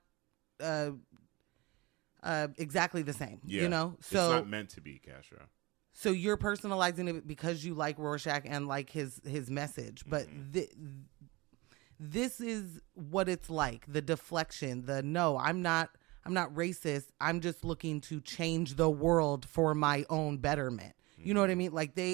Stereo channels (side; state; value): left; quieter; 23.5 dB